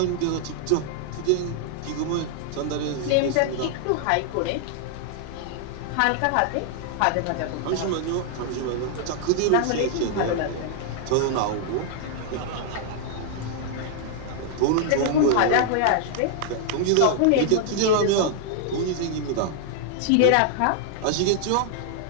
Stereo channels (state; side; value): different; both; correlation 0.00